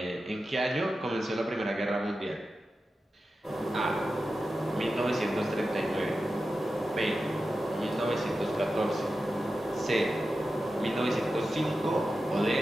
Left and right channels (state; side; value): normal; both; correlation 0.92